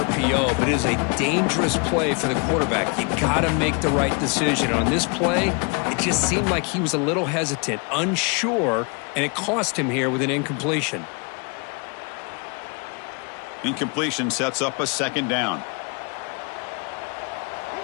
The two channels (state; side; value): quieter; right; 34.0 dB